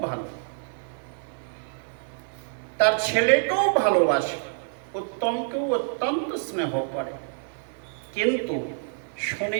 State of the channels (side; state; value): left; silent; 60 dB below the other